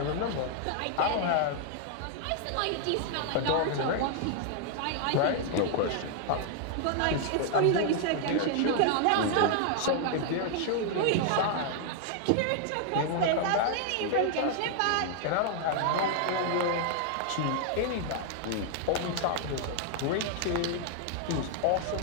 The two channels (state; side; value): different; both; correlation 0.00